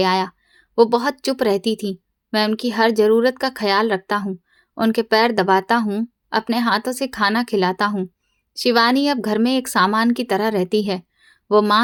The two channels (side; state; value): both; identical; correlation 1.00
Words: आया। वो बहुत चुप रहती थी। मैं उनकी हर जरूरत का ख्याल रखता हूँ, उनके पैर दबाता हूँ, अपने हाथों से खाना खिलाता हूँ। शिवानी अब घर में एक सामान की तरह रहती है। वो